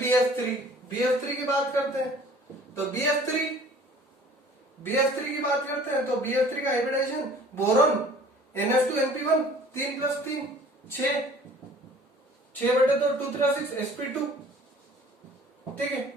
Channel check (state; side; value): normal; both; correlation 0.50